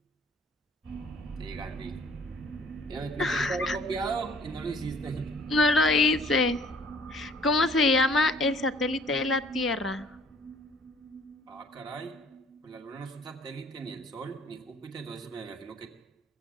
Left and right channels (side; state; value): both; normal; correlation 0.56